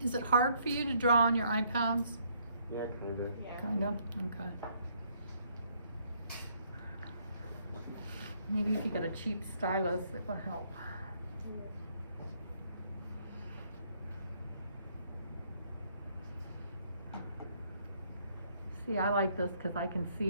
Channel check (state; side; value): inverted; both; correlation -0.68